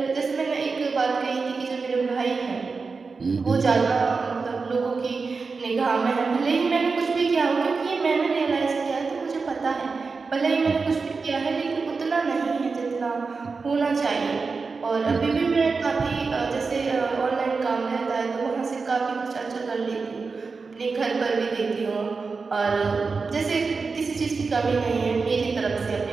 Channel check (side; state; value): left; quieter; 4.5 dB